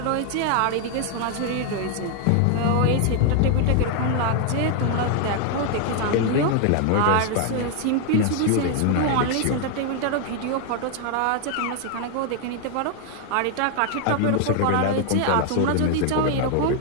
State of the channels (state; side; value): different; both; correlation 0.00